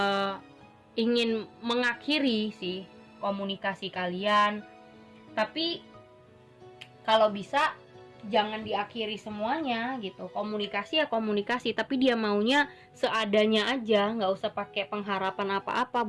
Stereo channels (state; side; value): identical; both; correlation 1.00